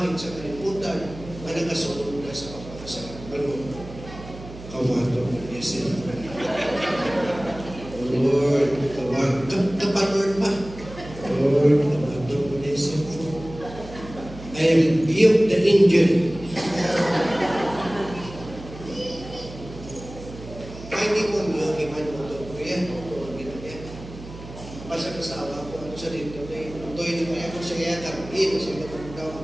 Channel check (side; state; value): right; noise; hum, 14 dB below the sound